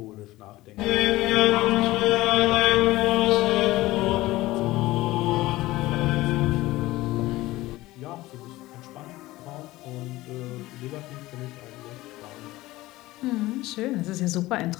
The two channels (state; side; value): quieter; right; 18.1 dB